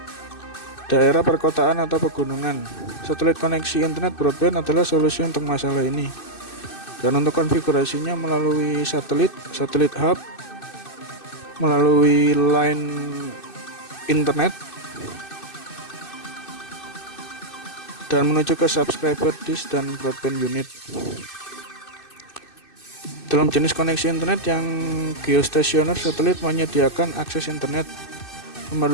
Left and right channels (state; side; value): late; right; 2.6 ms